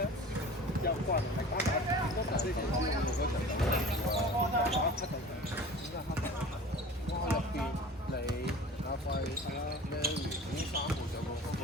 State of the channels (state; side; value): normal; both; correlation 0.40